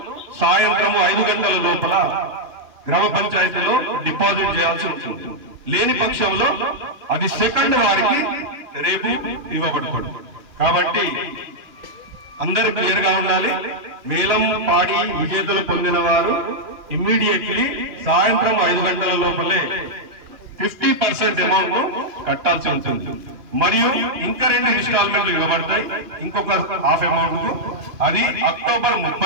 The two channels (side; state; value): left; late; 3.0 ms